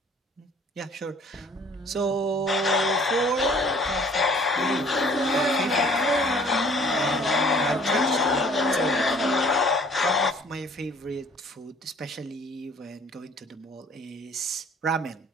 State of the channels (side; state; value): both; normal; correlation 0.54